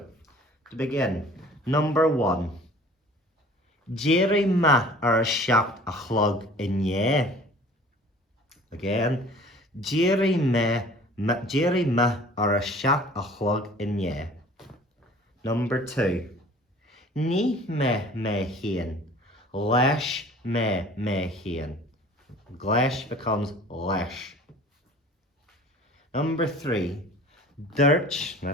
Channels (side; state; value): both; normal; correlation 0.48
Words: to begin, number 1. Jerry ma ar a seacht a chlog in ye. Again, Jerry ma ar a seacht a chlog in ye. Number 2. Ní me hien, lesh me hien. Glesh becomes lesh. Number 3. Dirch,